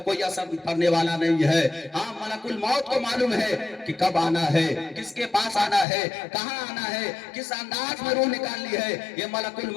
کوئی اثر پڑنے والا نہیں ہے۔ ہاں، ملک الموت کو معلوم ہے کہ کب آنا ہے، کس کے پاس آنا ہے، کہاں آنا ہے، کس انداز میں روح نکالنی ہے، یہ ملک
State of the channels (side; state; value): right; drops out; at 5.9 s